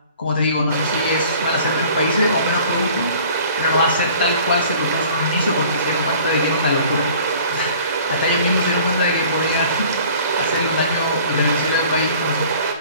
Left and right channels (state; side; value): inverted; both; correlation -0.49